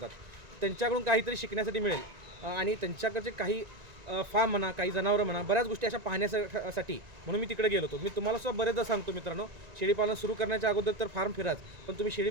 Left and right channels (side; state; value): left; late; 1.9 ms